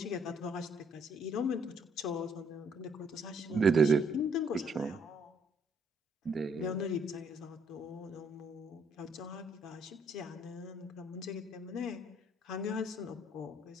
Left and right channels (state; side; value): normal; both; correlation 0.67